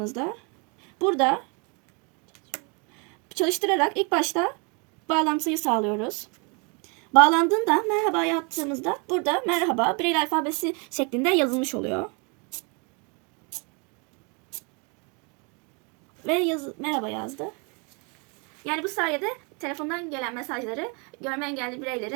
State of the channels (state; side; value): quieter; left; 33.4 dB